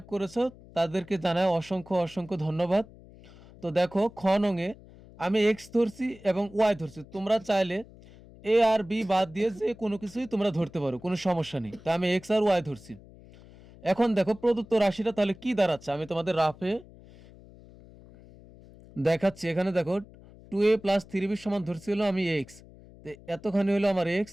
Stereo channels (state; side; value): noise; left; hum, 21 dB below the sound